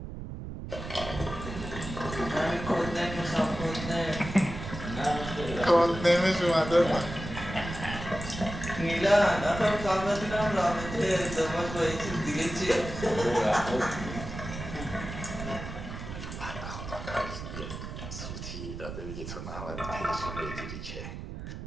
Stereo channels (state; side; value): noise; right; rumble, 8 dB below the sound